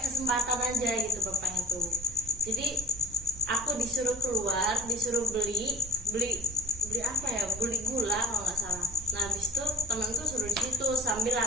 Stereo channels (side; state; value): right; noise; hum, 19 dB below the sound